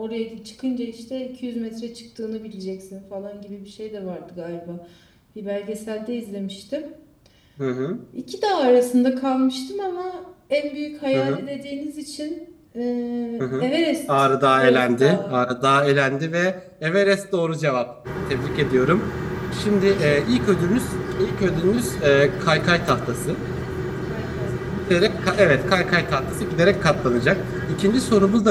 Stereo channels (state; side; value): identical; both; correlation 1.00